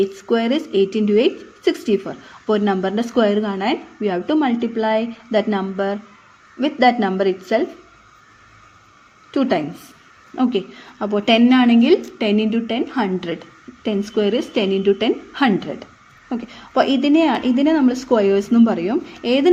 square is 8 into 8 64. അപ്പോൾ ഒരു നമ്പറിൻ്റെ സ്ക്വയർ കാണാൻ we have to multiply that number with that number itself 2 times. Okay, അപ്പോൾ 10 ആണെങ്കിൽ 10 into 10 100. 10 square is 10 into 10 100. Okay, അപ്പോൾ ഇതിനെ നമ്മൾ സ്ക്വയേഴ്സ് എന്നും പറയും. ഏത്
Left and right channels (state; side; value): identical; both; correlation 1.00